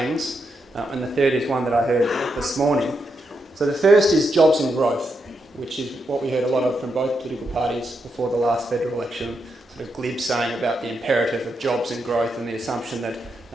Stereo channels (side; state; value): both; normal; correlation 0.83